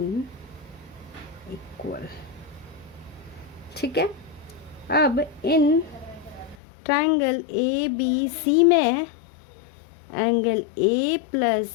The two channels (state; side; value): drops out; right; at 6.6 s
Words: equal, ठीक है। अब इन ट्रायंगल ए बी सी में angle A